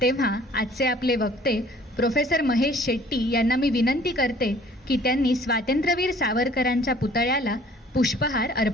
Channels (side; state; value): both; normal; correlation 0.54